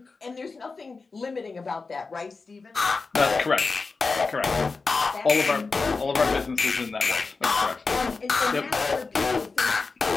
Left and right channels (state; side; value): quieter; right; 4.2 dB